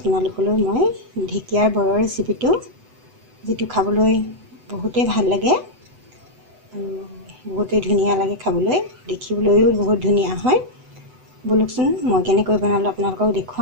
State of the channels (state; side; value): late; left; 8.0 ms